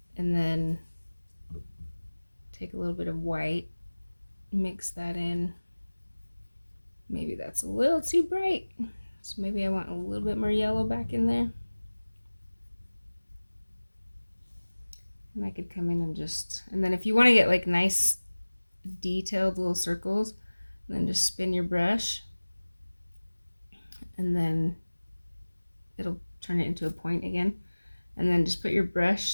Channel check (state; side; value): inverted; both; correlation -1.00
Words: and then take a little bit of white, mix that in. Maybe that's a little too bright, so maybe I want a little bit more yellow back in there. And I could come in and and then if you want to get like nice detailed little circles, then just spin your brush and then it'll turn it into a point again. And then just put your